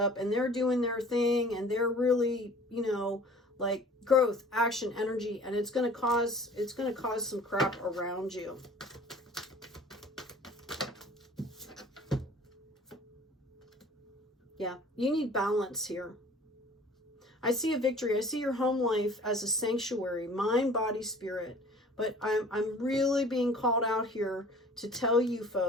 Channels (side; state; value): both; normal; correlation 0.48